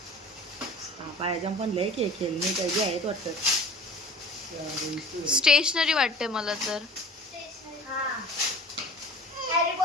पायाजम पण लय के खेळणी काही आहेत वाटतं. स्टेशनरी वाटते मला तर. हा. हॅरी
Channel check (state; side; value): normal; both; correlation 0.42